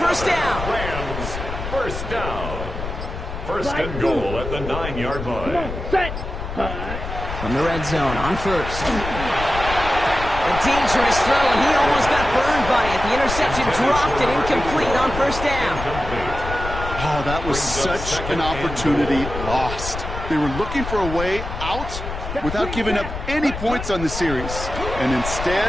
down. Rams, first down. First and goal at the 9-yard Come line. on, set. Hut. From the red zone on first. A dangerous throw, and he almost got burned by it. The interception dropped and incomplete on first down. Oh, that was such an opportunity lost. They were looking for a way out without giving up any points on the series. And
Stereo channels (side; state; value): left; noise; rumble, 7 dB below the sound